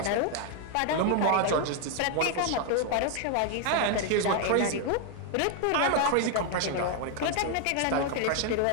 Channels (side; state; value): both; different; correlation 0.01